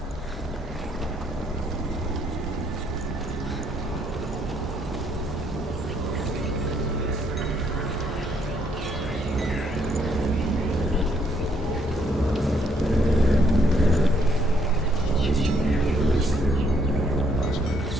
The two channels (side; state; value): both; normal; correlation 0.69